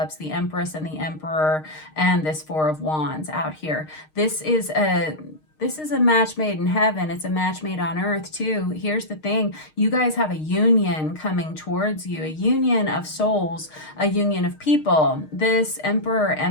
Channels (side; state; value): right; late; 6.5 ms